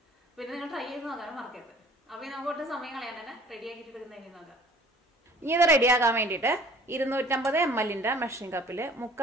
പിന്നെ നിങ്ങൾ ട്രൈ ചെയ്ത് നോക്കാനും മറക്കരുത്. അപ്പോൾ നമുക്ക് ഒട്ടും സമയം കളയാൻ തന്നെ റെഡി ആക്കിയിട്ട് എടുക്കുന്നതിന് നോക്കാം. ഇനി ഇത് റെഡിയാക്കാൻ വേണ്ടിയിട്ട് 250 ml മെഷറിംഗ് കപ്പിൽ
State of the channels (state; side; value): normal; both; correlation 0.51